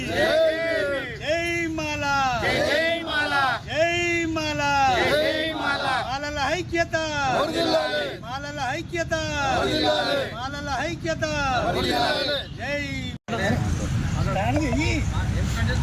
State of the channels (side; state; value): both; identical; correlation 1.00